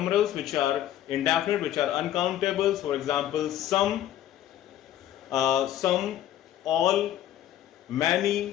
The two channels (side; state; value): right; quieter; 12.0 dB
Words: which are indefinite, which are uncountable. For example some, all,